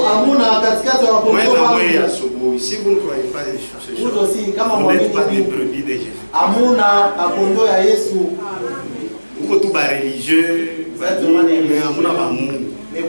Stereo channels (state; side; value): inverted; both; correlation -1.00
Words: Si vous ne croyez pas des choses, vous n'êtes pas des brebis de Jésus. Vous êtes tous religieux, mais